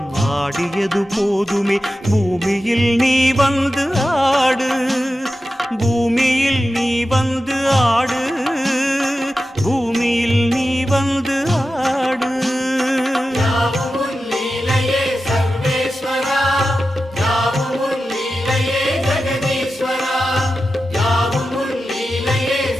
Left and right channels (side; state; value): both; normal; correlation 0.92